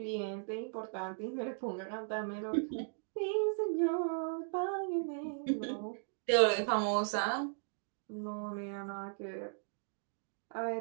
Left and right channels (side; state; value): left; silent; digital silence